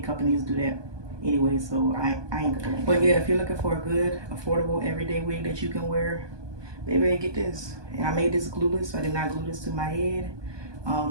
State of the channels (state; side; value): late; left; 1.2 ms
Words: companies do that anyway, so I ain't gonna complain. But yeah, if you're looking for a good, affordable, everyday wig that you can wear, baby, get this. And I made this glueless. I did not glue this to my head.